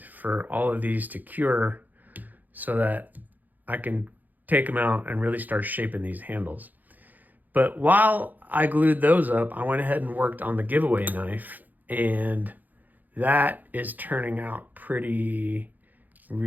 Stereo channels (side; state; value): left; late; 0.083 ms